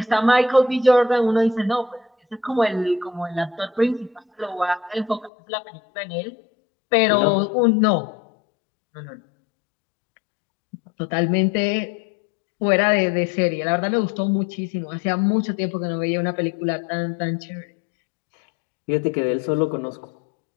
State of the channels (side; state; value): right; drops out; at 5.3 s